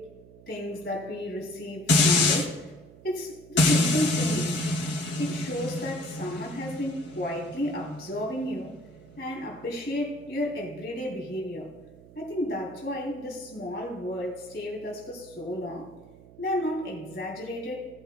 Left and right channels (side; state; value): right; noise; hum, 21 dB below the sound